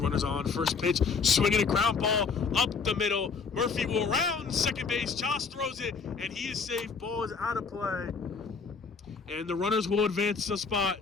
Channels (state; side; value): quieter; right; 5.2 dB